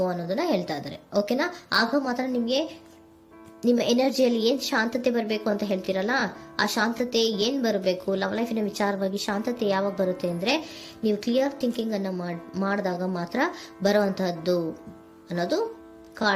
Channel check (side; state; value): both; identical; correlation 1.00